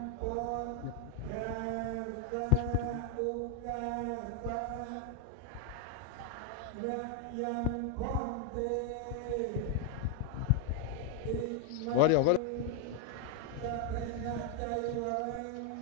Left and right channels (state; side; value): different; both; correlation 0.00